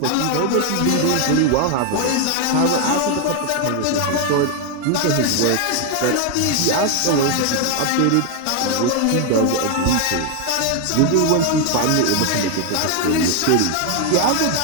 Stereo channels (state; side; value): different; both; correlation 0.01